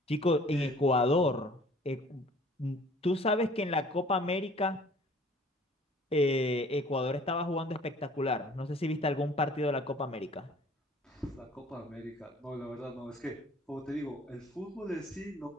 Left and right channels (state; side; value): normal; both; correlation 0.52